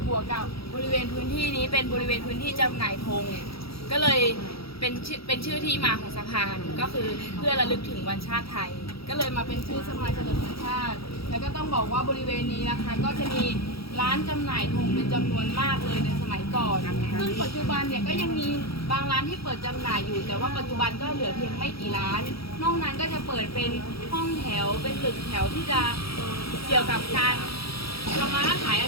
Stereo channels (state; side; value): late; right; 0.76 ms